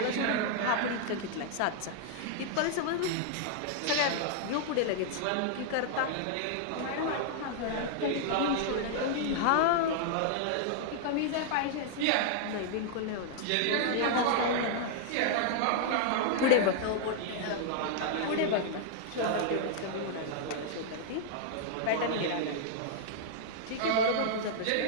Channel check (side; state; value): both; different; correlation -0.01